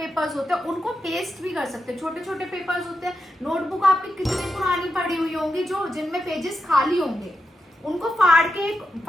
होते हैं उनको पेस्ट भी कर सकते हैं। छोटे छोटे पेपर्स होते हैं। नोटबुक आपकी कितनी पुरानी पड़ी हुई होंगी जो जिनमें पेजेस खाली होंगे, उनको फाड़ के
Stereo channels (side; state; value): both; normal; correlation 0.87